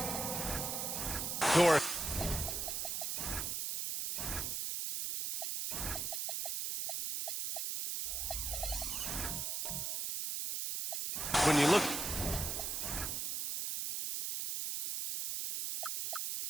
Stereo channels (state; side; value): noise; right; hiss, 1 dB below the sound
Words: Dort. when you look.